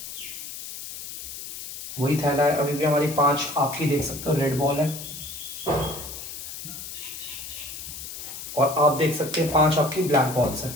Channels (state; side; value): noise; left; hiss, 10 dB below the sound